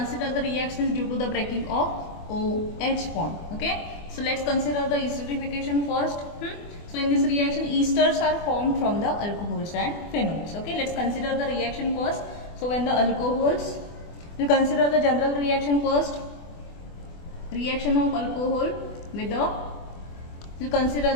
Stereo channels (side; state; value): right; late; 24 ms